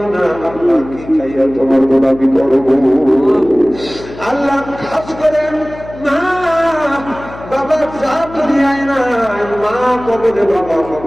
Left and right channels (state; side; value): noise; left; hum, 15 dB below the sound